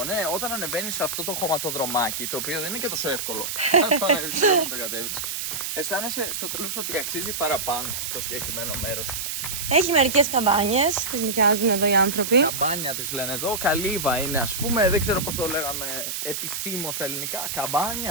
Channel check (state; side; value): noise; right; hiss, 4 dB below the sound